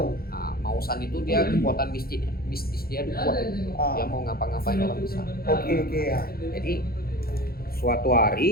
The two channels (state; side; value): late; right; 0.44 ms